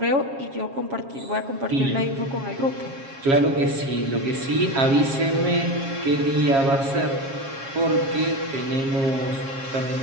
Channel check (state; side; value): late; left; 7.4 ms